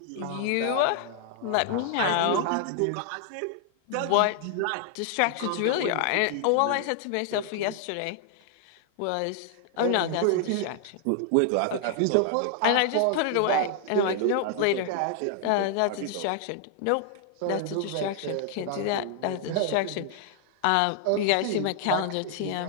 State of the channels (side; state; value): both; different; correlation 0.00